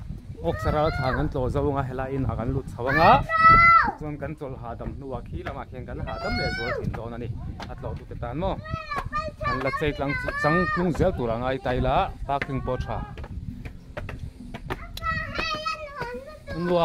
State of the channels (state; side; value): identical; both; correlation 1.00